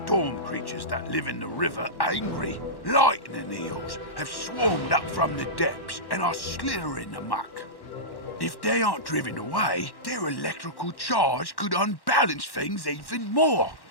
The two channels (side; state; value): right; late; 1.1 ms